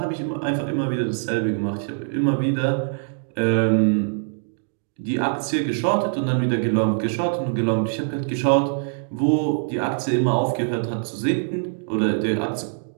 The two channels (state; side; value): silent; left; digital silence